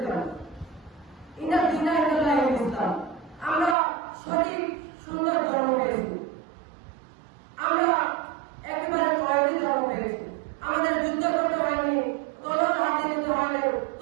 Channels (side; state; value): left; drops out; at 3.8 s